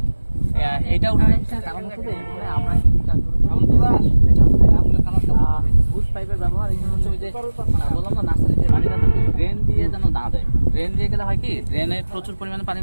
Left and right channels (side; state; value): both; inverted; correlation -1.00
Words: এইটা উঠানোর পিছনে কারণ হচ্ছে যে এখানে আমরা কি কাজ করব আমরা কারণ বুশ পাইপের ব্যবহার এখানে হচ্ছে ওই যে বললাম না নার্সারিতে পানিটা ড্রেন দিয়ে যেন না দেয় ড্রেন দিয়ে গেলে হয় কি ড্রেনে প্রচুর পরিমাণে পানি